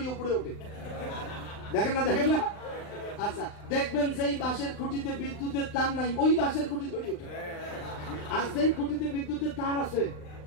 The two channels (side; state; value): right; late; 39 ms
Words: উপরে ওঠে। দেখেন না? আচ্ছা, দেখবেন যেই বাঁশের খুঁটিতে বিদ্যুতের তার নাই, ওই বাঁশের খুঁটি ধরে ওঠে। আর যেই খুঁটিতে বিদ্যুতের তার আছে